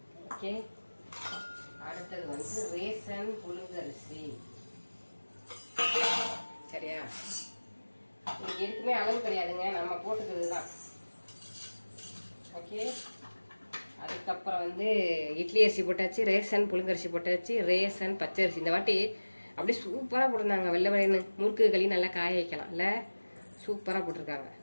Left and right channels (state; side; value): inverted; both; correlation -1.00